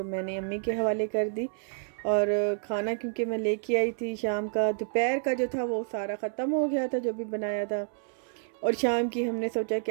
मैंने अम्मी के हवाले कर दी। और खाना क्योंकि मैं लेके आई थी शाम का, दोपहर का जो था वो सारा ख़त्म हो गया था जो भी बनाया था, और शाम की हमने सोचा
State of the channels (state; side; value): silent; left; 58 dB below the other